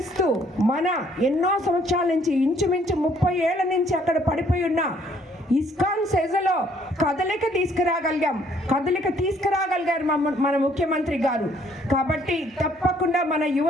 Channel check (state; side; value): normal; both; correlation 0.64